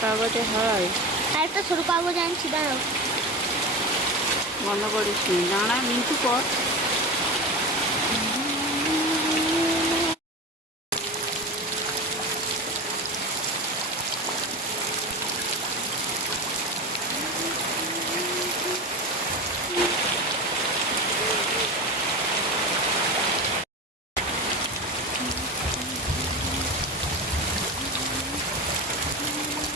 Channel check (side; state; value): both; normal; correlation 0.26